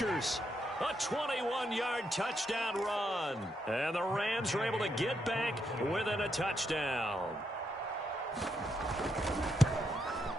a 21-yard touchdown run. And the Rams are able to get back within a touchdown.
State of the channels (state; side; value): normal; both; correlation 0.80